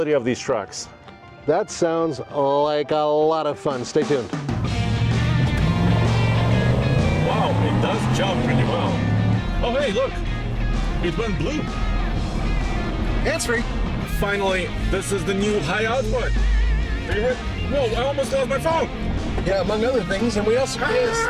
of these trucks. That sounds like a lot of fun. Stay tuned. Wow, it does jump pretty well. Oh, hey, look. It went blue. Hands-free. Finally, this is the new high output. Favorite? Whoa, I almost lost my phone. Yeah, among other things. And we also,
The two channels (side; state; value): both; identical; correlation 1.00